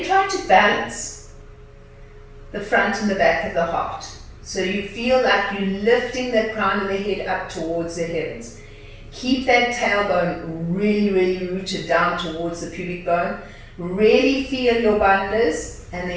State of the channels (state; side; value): identical; both; correlation 1.00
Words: try to balance the front and the back of the heart. So you feel like you're lifting that crown of the head up towards the heavens. Keep that tailbone really, really rooted down towards the pubic bone. Really feel your bandhas and